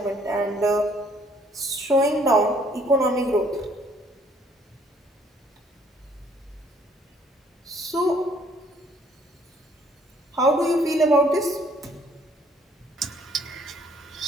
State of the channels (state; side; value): normal; both; correlation 0.62